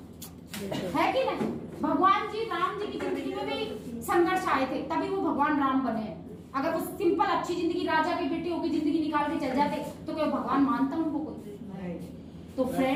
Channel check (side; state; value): both; identical; correlation 1.00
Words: है कि नहीं। भगवान जी राम जी की जिंदगी में भी संघर्ष आए थे, तभी वो भगवान राम बने। अगर वो सिंपल अच्छी जिंदगी, राजा के बेटे होकर जिंदगी निकाल के चल जाते तो क्या भगवान मानता उनको कोई। तो